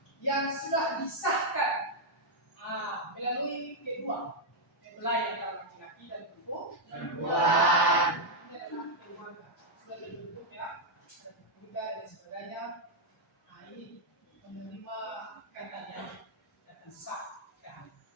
yang sudah disahkan melalui kedua mempelai antara laki-laki dan perempuan. Ini adalah keluarga sudah dibentuk ya, ada keluarga dan sebagainya. Nah ini menerima katanya dan sah kan.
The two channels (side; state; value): both; normal; correlation -0.03